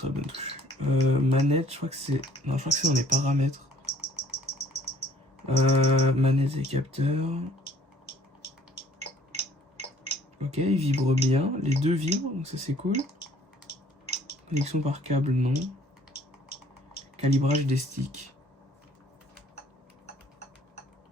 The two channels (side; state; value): both; normal; correlation 0.57